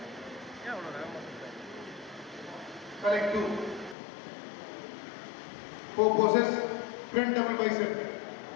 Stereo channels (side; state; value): right; drops out; at 4.0 s